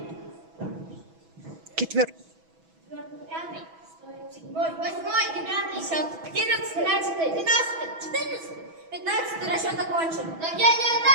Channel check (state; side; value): late; left; 6.1 ms